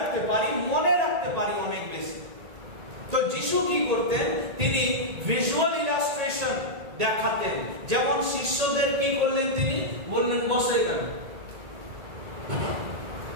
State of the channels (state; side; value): late; left; 1.8 ms